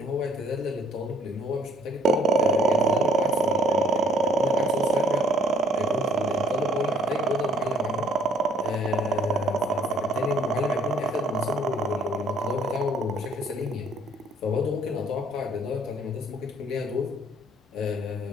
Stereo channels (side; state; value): both; normal; correlation 0.61